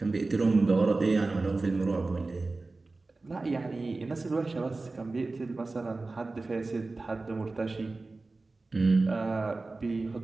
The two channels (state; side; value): quieter; left; 3.4 dB